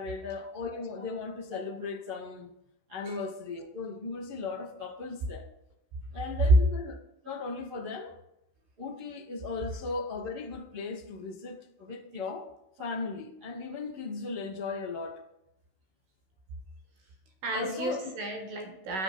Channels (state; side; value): late; left; 16 ms